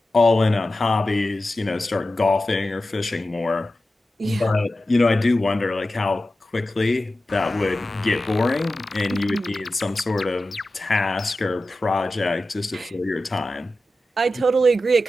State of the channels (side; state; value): both; normal; correlation 0.93